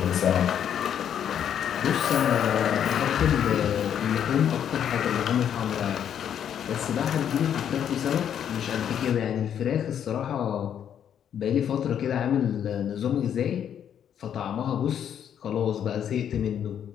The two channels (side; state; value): right; quieter; 9.1 dB